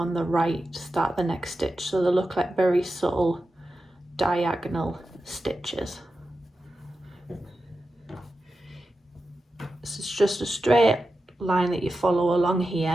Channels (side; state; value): both; normal; correlation 0.91